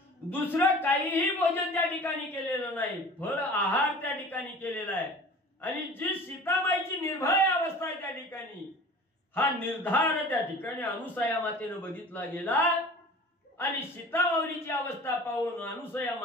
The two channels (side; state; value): both; normal; correlation 0.42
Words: दुसरं काहीही भोजन त्या ठिकाणी केलेलं नाही, फळ आहार त्या ठिकाणी केलेला आहे. आणि जी सीताबाईची निर्भय अवस्था आहे त्या ठिकाणी, हा निर्धार त्या ठिकाणी अनुसया मातेनं बघितला गेला. आणि सीता माऊलीची अवस्था पाहून अनुसया